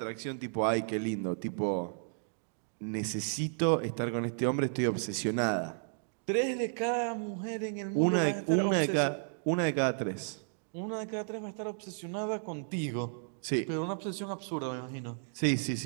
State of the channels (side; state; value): left; silent; digital silence